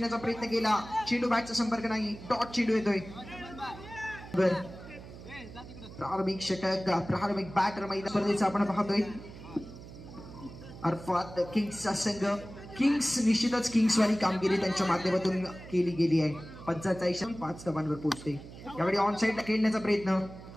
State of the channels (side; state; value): right; noise; hum, 15 dB below the sound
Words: प्रयत्न केला चेंडू बॅटचा संपर्क नाही डॉट चेंडू येतोय प्रारंभिक षटक प्रारंभिक बॅटर मैदान स्पर्धेचा आपण पाहतोय अर्थात किंग्सचा संघ किंग्स निश्चितच किंग्स वाली कामगिरी त्यांच्या माध्यमातून केली गेली आहे 45 धावांवर पोहोचते यावेळी ऑन साइडला खेळण्याचा प्रयत्न